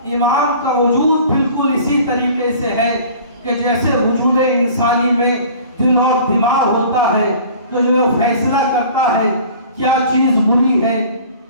امام کا وجود بالکل اسی طریقے سے ہے کہ جیسے وجود انسانی میں دل اور دماغ ہوتا ہے، تو جو فیصلہ کرتا ہے کیا چیز بری ہے،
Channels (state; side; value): inverted; both; correlation -0.46